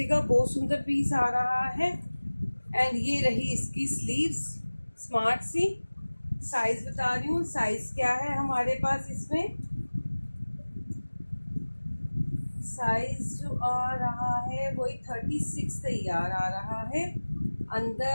बहुत सुंदर पीस आ रहा है। एंड ये रही इसकी स्लीव्स, स्मार्ट सी। साइज बता रही हूँ, साइज क्या है हमारे पास इसमें, साइज जो आ रहा है वही 36 तैयार आ रहा है।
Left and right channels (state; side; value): inverted; both; correlation -1.00